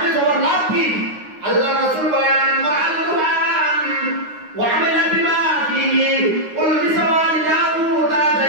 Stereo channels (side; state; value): left; late; 9.6 ms